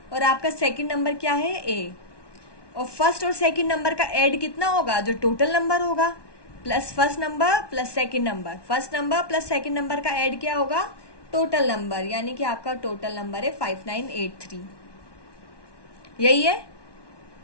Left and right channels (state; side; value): late; right; 1.2 ms